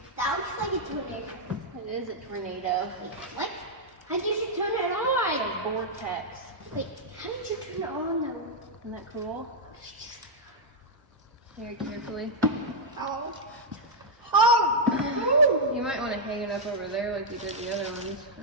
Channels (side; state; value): both; normal; correlation -0.04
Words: That looks like a tornado. It is a tornado. What? How did you turn it on? A vortex. Wait, how did you turn it on though? Isn't that cool? Very carefully. Oh. Oh! You might want to hang it up over there like you did the other ones.